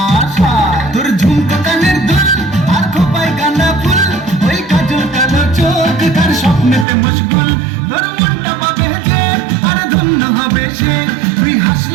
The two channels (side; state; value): left; drops out; at 6.9 s